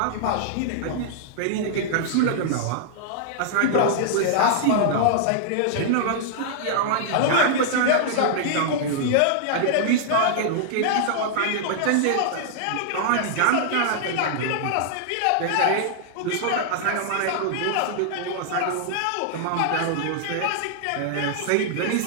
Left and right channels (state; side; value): different; both; correlation -0.01